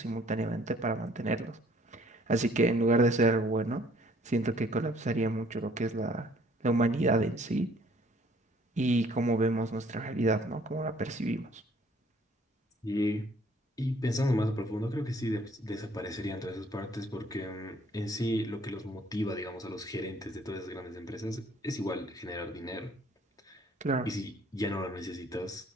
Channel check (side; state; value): both; normal; correlation 0.59